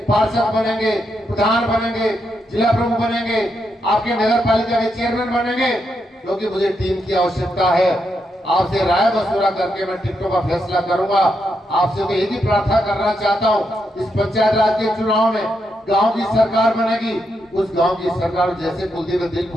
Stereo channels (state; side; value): normal; both; correlation 0.82